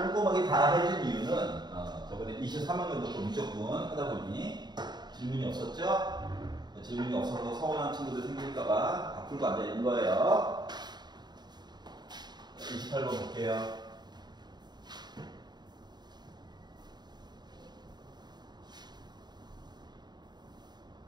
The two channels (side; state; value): left; late; 0.21 ms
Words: 다 해준 이유는 저번에 23학년도 좀 무조건 하다 보니 질문이 없었죠? 질문이 없어서 서운한 친구들 생길까봐 다 풀고 앉아있는 거예요. 28번 볼게요.